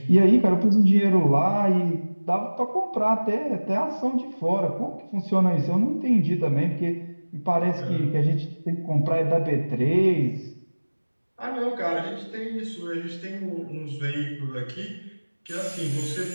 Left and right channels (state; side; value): inverted; both; correlation -1.00